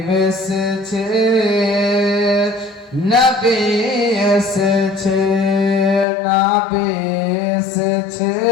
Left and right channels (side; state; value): right; drops out; at 6.1 s